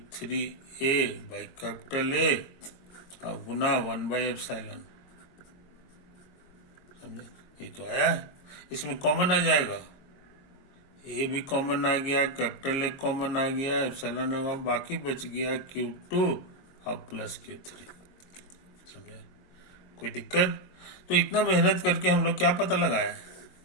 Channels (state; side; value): late; right; 22 ms